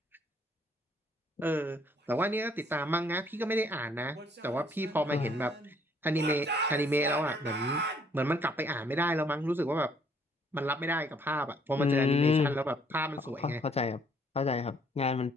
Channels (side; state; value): both; normal; correlation 0.64